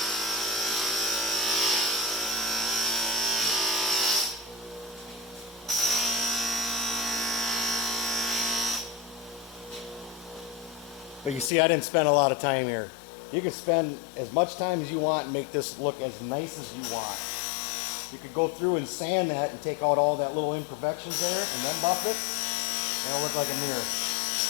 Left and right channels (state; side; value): drops out; right; at 11.5 s